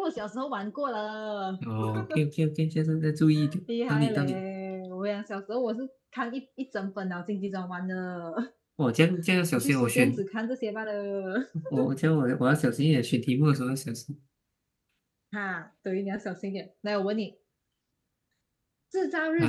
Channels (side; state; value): both; identical; correlation 1.00